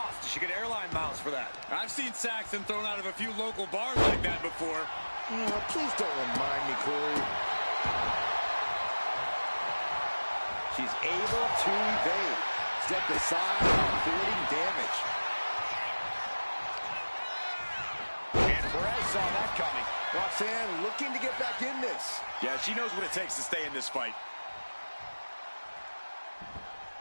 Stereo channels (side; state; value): both; inverted; correlation -1.00